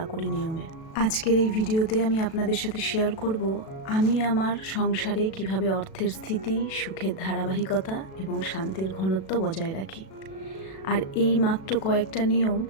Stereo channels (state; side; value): late; right; 37 ms